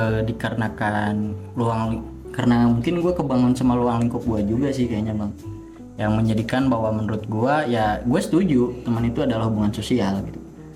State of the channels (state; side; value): identical; both; correlation 1.00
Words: dikarenakan karena mungkin gue kebangun sama luang lingkup gue juga sih kayaknya, Bang, yang menjadikan bahwa menurut gue ya gue setuju teman itu adalah hubungan sosial gitu.